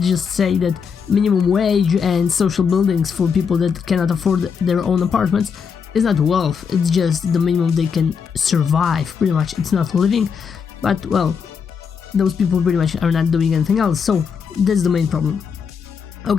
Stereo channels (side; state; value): right; quieter; 6.3 dB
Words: just say that minimum wage and social buildings for people that cannot afford their own apartments is not wealth. It's just the minimum they can survive. Pretty much it's not living, but well, those people pretty much are not doing anything else, so that's the main problem.